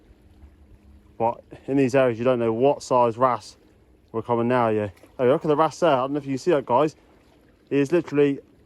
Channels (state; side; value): identical; both; correlation 1.00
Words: But in these areas, you don't know what size wrasse we're coming now. Yeah, oh, look at the wrasse there. I don't know if you can see that, guys. He is literally